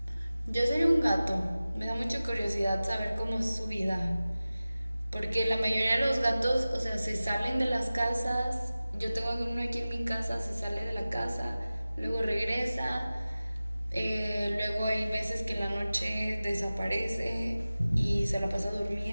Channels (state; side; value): inverted; both; correlation -0.97